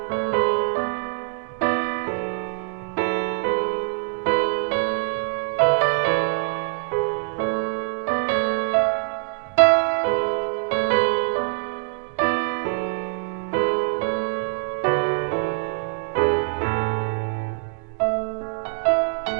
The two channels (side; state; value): left; silent; 59 dB below the other